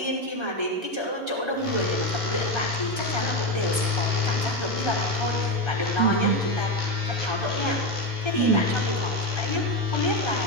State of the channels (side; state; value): right; late; 1.3 ms